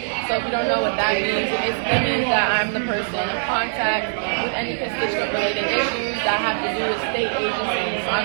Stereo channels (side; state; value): left; silent; digital silence